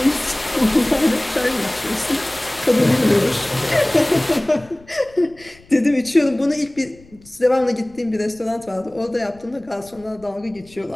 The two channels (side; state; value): left; noise; rumble, 26 dB below the sound